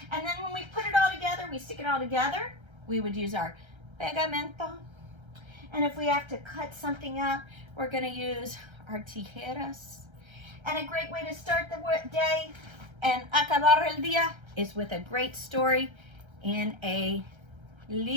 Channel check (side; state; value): left; late; 1.3 ms